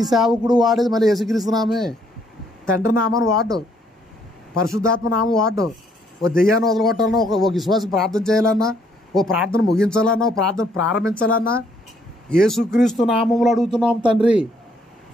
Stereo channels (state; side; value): normal; both; correlation 0.68